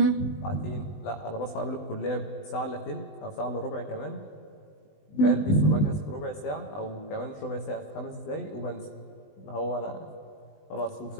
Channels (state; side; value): late; right; 20 ms